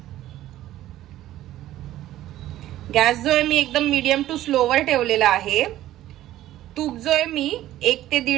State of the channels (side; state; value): left; quieter; 14.0 dB